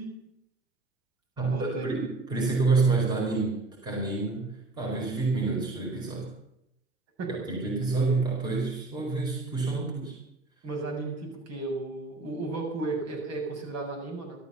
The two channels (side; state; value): left; quieter; 3.4 dB